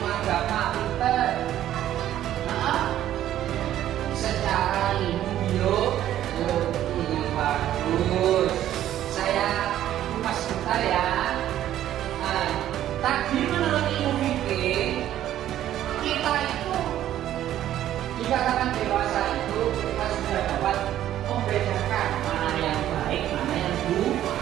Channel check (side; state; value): left; quieter; 12.2 dB